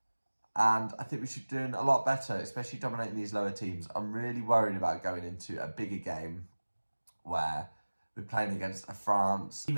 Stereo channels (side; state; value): both; inverted; correlation -1.00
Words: and I think we should be doing a lot better, especially dominating these lower teams. I'm really worried about going into a bigger game where we're playing against a France,